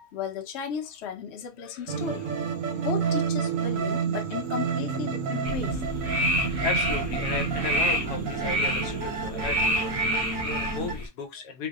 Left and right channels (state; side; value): normal; both; correlation -0.03